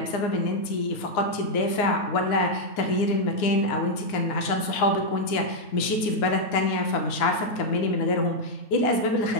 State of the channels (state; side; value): late; right; 9.7 ms